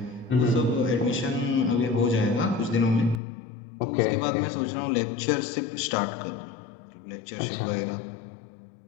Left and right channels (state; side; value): drops out; right; at 3.2 s